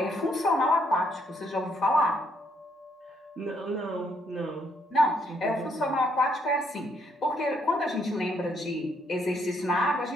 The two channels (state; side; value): normal; both; correlation 0.71